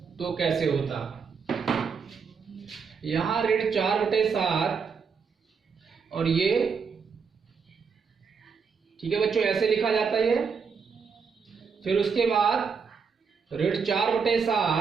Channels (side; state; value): left; quieter; 5.8 dB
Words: तो कैसे होता। यहाँ ऋण 4/7 और ये ठीक है बच्चों, ऐसे लिखा जाता है ये। फिर उसके बाद ऋण